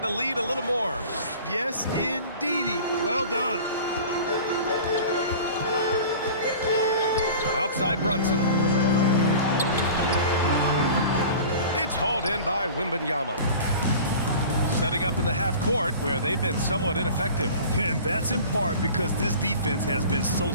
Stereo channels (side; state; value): both; inverted; correlation -0.40